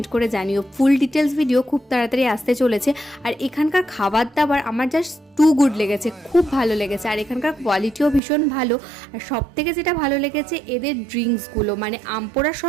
করে জানিও। ফুল ডিটেলস ভিডিও খুব তাড়াতাড়ি আসতে চলেছে। আর এখানকার খাবার দাবার আমার জাস্ট টু গুড লেগেছে, খুব ভালো লেগেছে। আর এখানকার কোয়ালিটিও ভীষণ ভালো। আর সব থেকে যেটা ভালো লেগেছে এদের ড্রিঙ্কসগুলো, মানে আমপোড়া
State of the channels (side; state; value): left; drops out; at 8.2 s